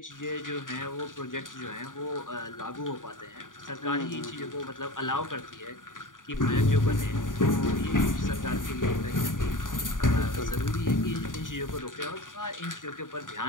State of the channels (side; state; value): right; late; 0.88 ms